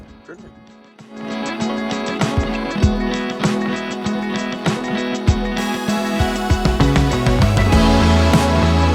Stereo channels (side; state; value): both; identical; correlation 1.00